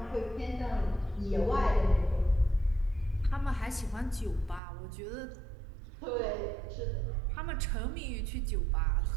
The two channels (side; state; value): left; drops out; at 4.6 s